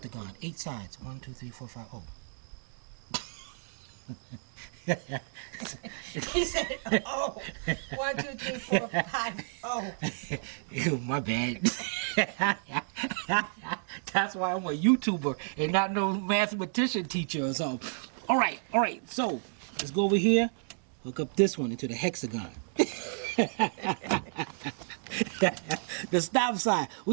8 sides. 1, 2, 3, 4, 5. Oh. He said, oh. 1, 2, 3, 4, 5. Oh. Ew, my bad. That's why I'm a YouTuber and not no mathematician teacher or something. All right. So let's go over here. Hook up this one into the hexagon. The stop sign.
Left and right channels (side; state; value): left; silent; digital silence